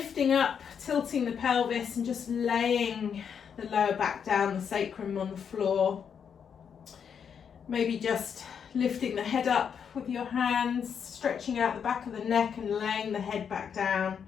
up, tilting the pelvis and just laying the lower back down, the sacrum on the floor. Maybe just lifting the head up with your hands, stretching out the back of the neck and laying the head back down.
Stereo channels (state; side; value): quieter; right; 7.3 dB